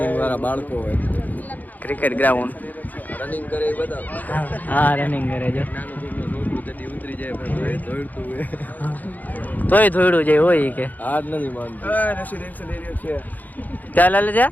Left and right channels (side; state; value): right; late; 0.082 ms